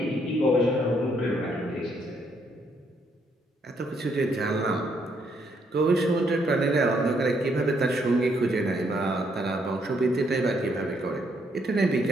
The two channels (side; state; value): both; normal; correlation 0.72